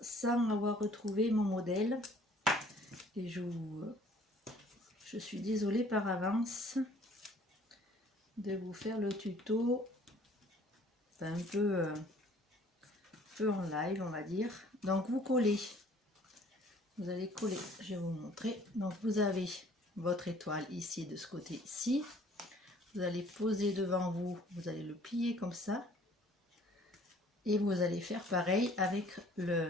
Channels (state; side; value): normal; both; correlation 0.55